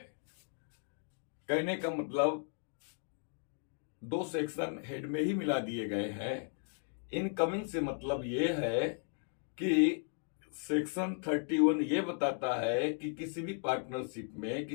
कहने का मतलब दो सेक्शन हेड में ही मिला दिए गए हैं। इनकमिंग से मतलब ये है कि सेक्शन 31 ये बताता है कि किसी भी पार्टनरशिप में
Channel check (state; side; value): silent; right; 54 dB below the other